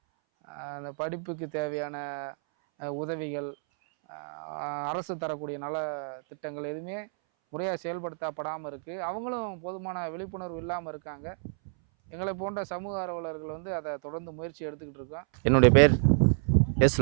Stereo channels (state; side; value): silent; left; 58 dB below the other